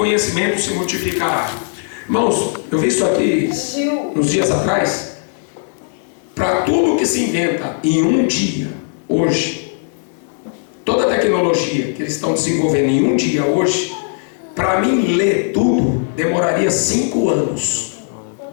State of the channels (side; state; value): right; silent; 68 dB below the other